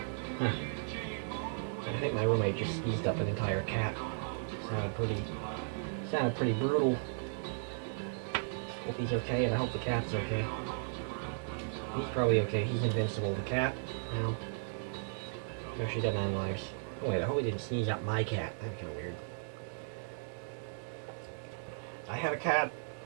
I think my roommate just sneezed up an entire cat. Sounded pretty brutal. Hope he's okay, and I hope the cat's okay. He's probably okay. He's invincible. The cat, no. Sure, she got 9 lives. Oh wait, I hope he didn't sneeze out my cat. That'd be kind of weird. I have a cat.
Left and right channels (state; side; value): silent; left; digital silence